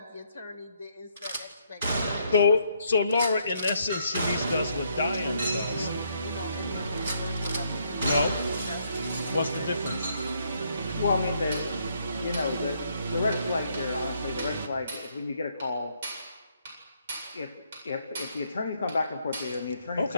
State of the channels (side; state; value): both; inverted; correlation -0.72